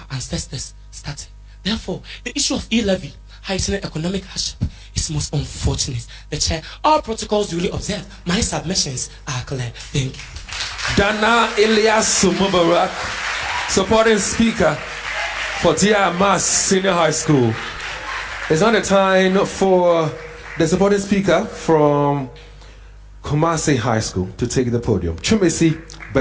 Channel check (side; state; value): both; identical; correlation 1.00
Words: ancestors started. Therefore, the issue of E-levy heightening economic hardship is most unfortunate. The chair, all protocols duly observed. My submissions are clear. Thank you. Dana Elias Mubarak, supporting speaker for Amass Senior High School. It's not the time for the supporting speaker from Kumasi High School to take the podium. Kumasi